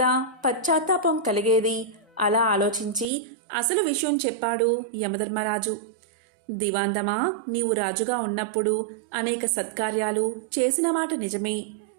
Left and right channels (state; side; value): drops out; left; at 3.1 s